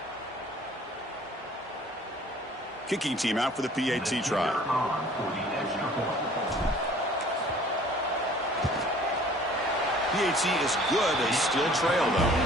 Kicking team out for the PAT try. PAT is good. They still trail, though.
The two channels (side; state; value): both; normal; correlation 0.52